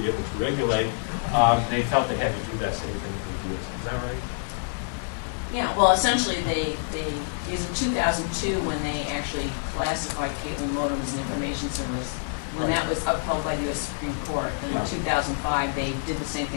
able to regulate, they felt they had to do that same thing for the DSL. Is that right? Yeah, well, essentially it was in 2002 when they actually classified cable modem as an information service. When that was upheld by the U.S. Supreme Court, then in 2005 they did the same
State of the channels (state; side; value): silent; right; digital silence